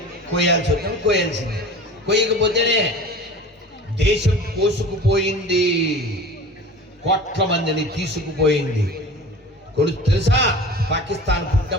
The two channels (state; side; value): normal; both; correlation 0.38